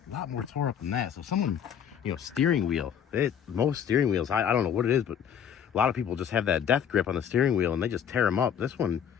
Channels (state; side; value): quieter; right; 8.5 dB